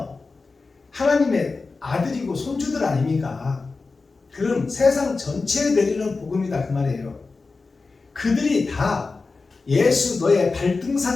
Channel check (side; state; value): right; quieter; 4.0 dB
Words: 하나님의 아들이고 손주들 아닙니까? 그럼 세상 전체에 내리는 복음이다 그 말이에요. 그들이 다 예수 너의